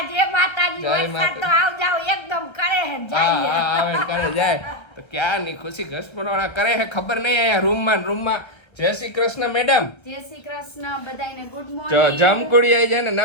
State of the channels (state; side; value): late; right; 1.4 ms